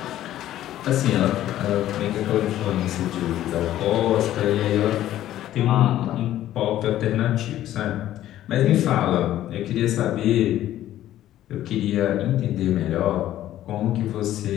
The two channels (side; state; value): right; quieter; 13.1 dB